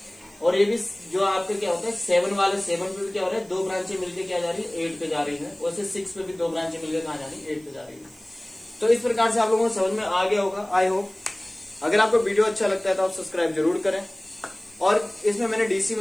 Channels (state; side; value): noise; right; hiss, 27 dB below the sound